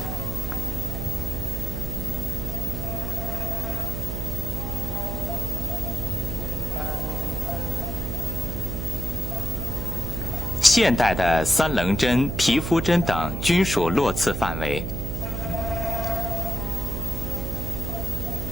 “现代的三棱针、皮肤针等均属络刺范围。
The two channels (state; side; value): noise; right; hum, 3 dB below the sound